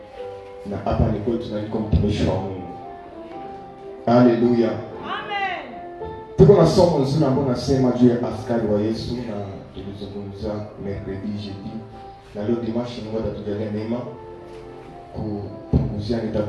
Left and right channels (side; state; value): both; identical; correlation 1.00